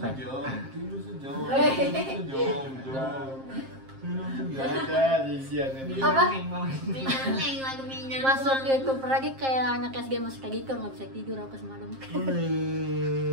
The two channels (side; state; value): left; late; 7.5 ms